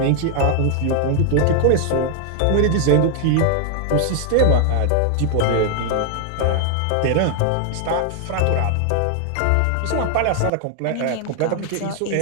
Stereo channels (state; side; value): different; both; correlation 0.00